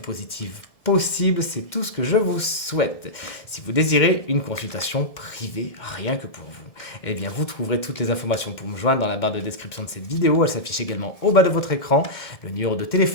positive possible. C'est tout ce que je vous souhaite. Si vous désirez une consultation privée, rien que pour vous, eh bien vous trouverez toutes les informations pour me joindre dans la barre de description de cette vidéo. Elle s'affiche également au bas de votre écran. Le numéro de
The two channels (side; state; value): right; late; 2.1 ms